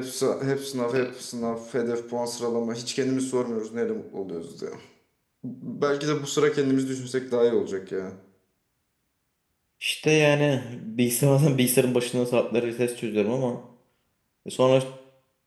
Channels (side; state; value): both; identical; correlation 1.00